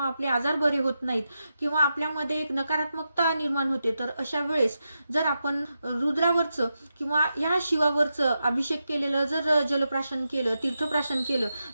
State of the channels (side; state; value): both; inverted; correlation -0.88